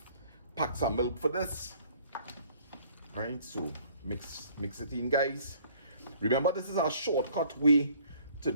packs of milk for this. Right, so mix it in, guys. Remember, this is a shortcut way to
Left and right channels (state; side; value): inverted; both; correlation -0.57